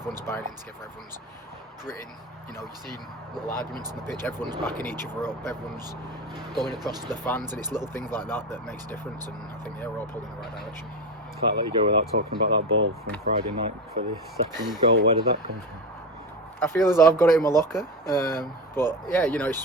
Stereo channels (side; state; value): both; normal; correlation 0.20